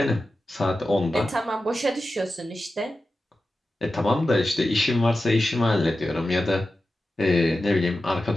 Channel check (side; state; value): both; normal; correlation 0.93